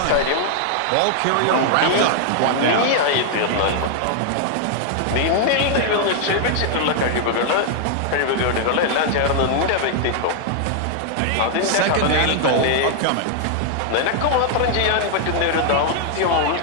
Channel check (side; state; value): both; different; correlation 0.00